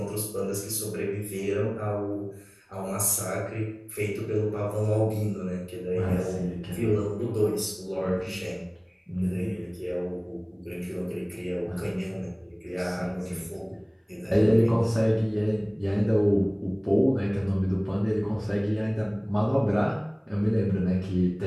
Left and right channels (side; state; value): both; identical; correlation 1.00